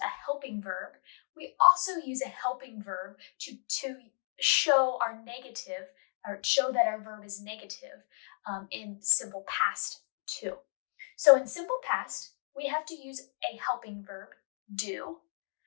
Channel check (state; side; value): silent; right; digital silence